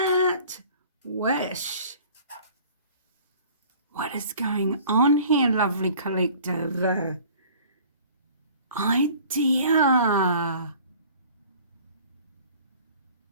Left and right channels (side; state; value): both; inverted; correlation -0.49